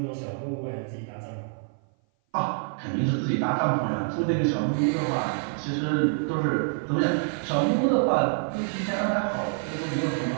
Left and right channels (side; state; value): left; silent; 56 dB below the other